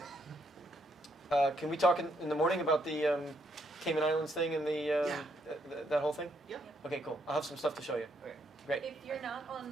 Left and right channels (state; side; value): normal; both; correlation 0.74